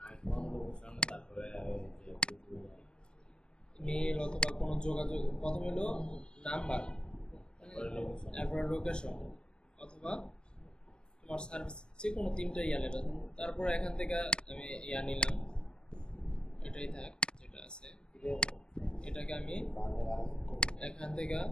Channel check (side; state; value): right; late; 0.049 ms